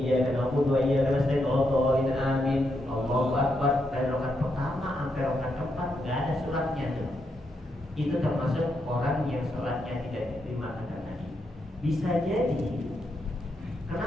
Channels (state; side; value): normal; both; correlation 0.81